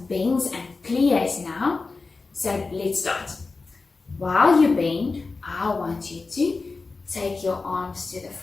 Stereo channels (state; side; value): quieter; right; 4.0 dB